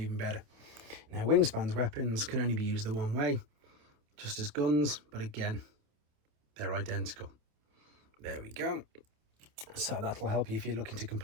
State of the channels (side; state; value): left; late; 28 ms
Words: better. Now, Wingspan's weapons can only be used the one way, just as guns, but again, they're identical. There we go. So that'll help you if you're looking to